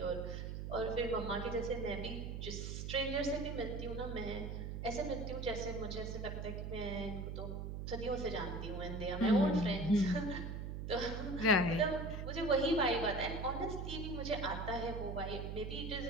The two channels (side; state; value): right; noise; hum, 5 dB below the sound